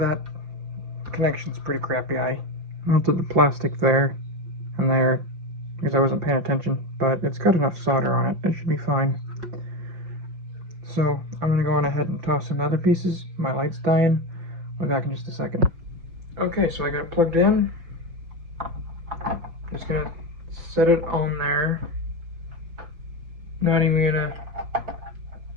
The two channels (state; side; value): late; left; 5.4 ms